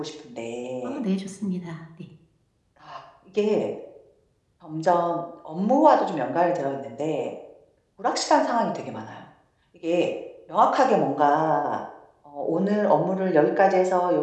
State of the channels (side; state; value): both; identical; correlation 1.00